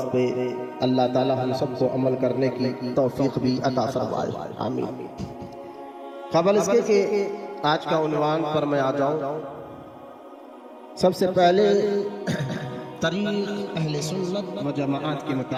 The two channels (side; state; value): both; identical; correlation 1.00